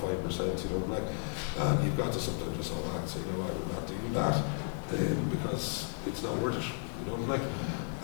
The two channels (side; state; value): right; silent; 55 dB below the other